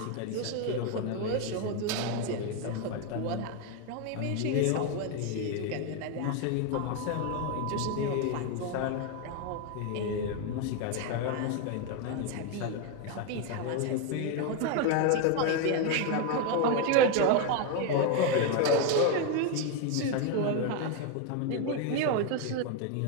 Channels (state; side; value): different; both; correlation 0.02